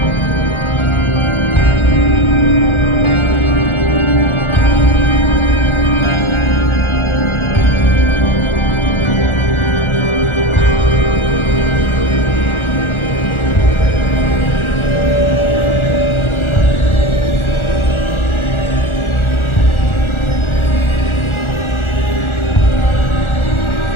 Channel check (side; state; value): right; late; 1.4 ms